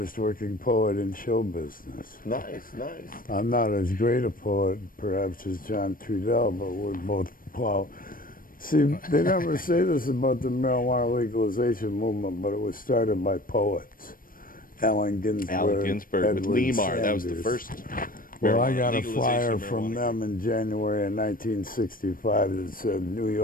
working poet in show business. Nice. I'm not as great a poet, perhaps, as John Trudell, but we're both plow. See, they never say this about the marijuana legalization movement, but it was started by poets. Allen Ginsberg, with Edward Lemar. That was the Sanders. first. Well, I got a legalization flyer of from marijuana. them in January of 1965 that said, New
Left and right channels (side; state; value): right; late; 0.41 ms